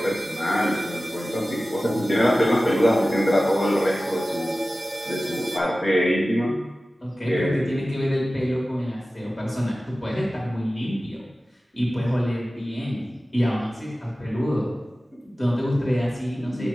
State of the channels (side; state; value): both; normal; correlation 0.96